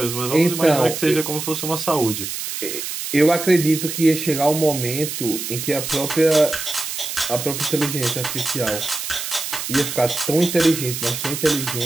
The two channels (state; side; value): noise; right; hiss, 5 dB below the sound